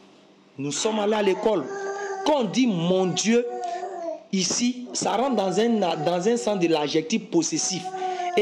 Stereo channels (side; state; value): both; identical; correlation 1.00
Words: Nous sommes allés à l'école. Quand on dit mon Dieu, ici, ça rentre dans un sens de l'adjectif possessif.